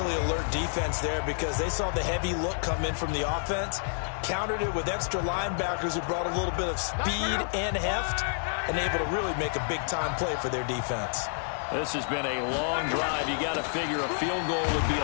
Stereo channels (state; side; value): silent; right; digital silence